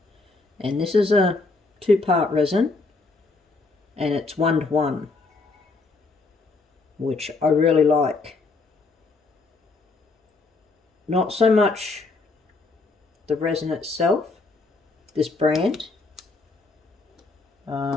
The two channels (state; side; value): quieter; right; 3.7 dB